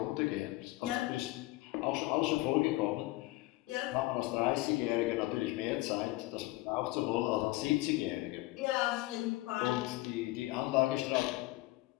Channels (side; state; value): right; quieter; 19.4 dB